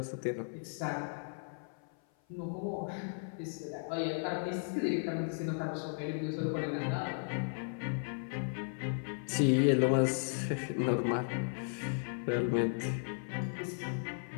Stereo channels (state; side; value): silent; right; 54 dB below the other